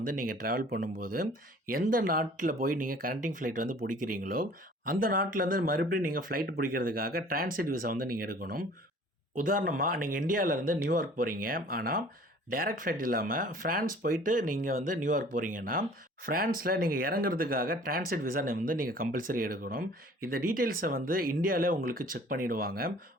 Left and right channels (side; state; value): both; normal; correlation 0.50